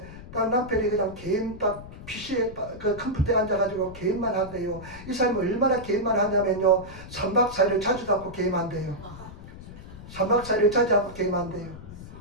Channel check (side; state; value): left; noise; rumble, 14 dB below the sound